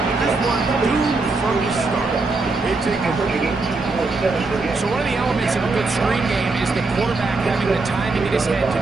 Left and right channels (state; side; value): quieter; left; 3.6 dB